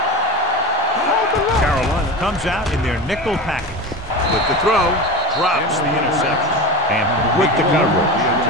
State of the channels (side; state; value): both; normal; correlation 0.27